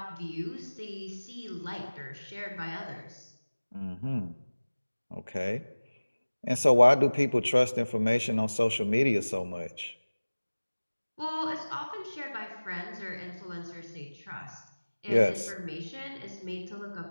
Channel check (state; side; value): inverted; both; correlation -1.00